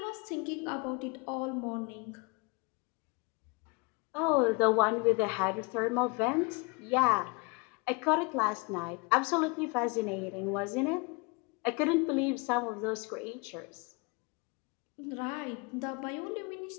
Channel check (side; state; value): right; quieter; 29.9 dB